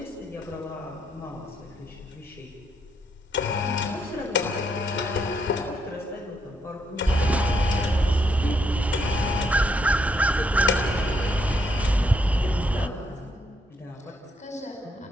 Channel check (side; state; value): both; normal; correlation 0.75